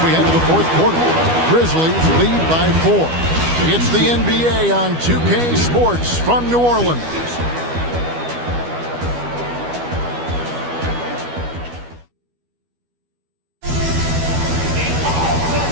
we head to the 4th quarter. Grizzlies lead by 4. It's the NBA on 2K Sports from New Orleans.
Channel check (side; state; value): left; late; 12 ms